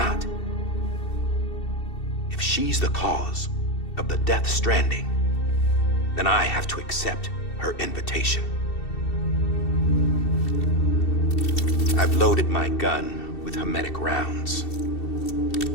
if she's the cause of the death stranding, then I have to accept her invitation. I've loaded my gun with hermetic rounds.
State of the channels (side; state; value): right; late; 2.7 ms